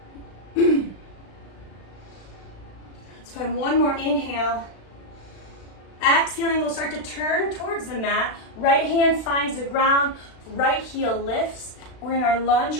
find one more inhale. Exhaling, we'll start to turn towards the mat. Right hand finds the ground, right heel lifts. We're in our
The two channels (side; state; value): right; late; 36 ms